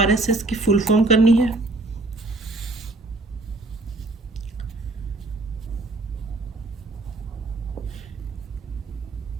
की फुल फॉर्म करनी है।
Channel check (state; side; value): quieter; left; 3.1 dB